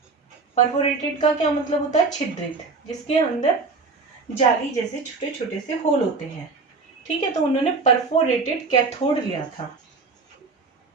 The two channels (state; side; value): quieter; left; 4.2 dB